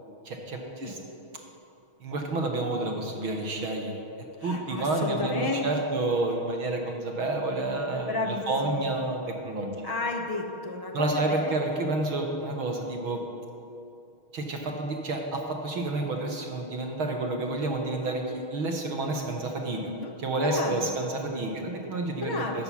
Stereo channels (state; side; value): late; left; 6.4 ms